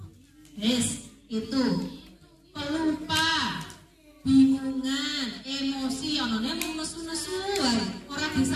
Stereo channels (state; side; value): identical; both; correlation 1.00